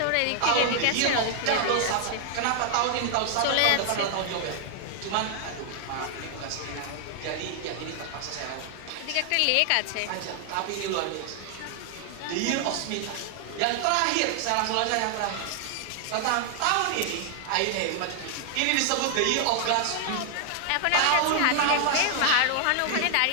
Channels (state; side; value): different; both; correlation 0.00